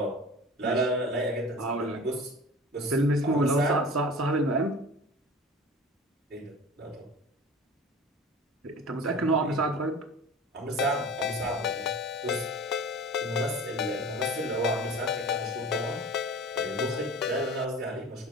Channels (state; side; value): normal; both; correlation 0.38